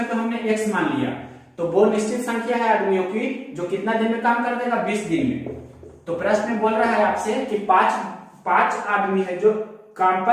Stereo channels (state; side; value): identical; both; correlation 1.00